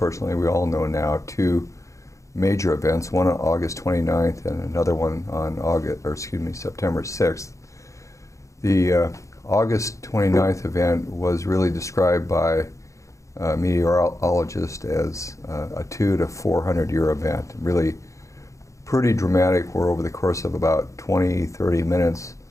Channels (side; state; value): right; late; 0.15 ms